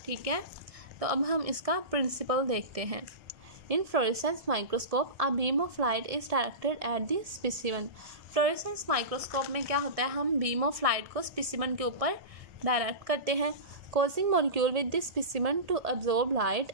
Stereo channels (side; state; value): left; late; 1.6 ms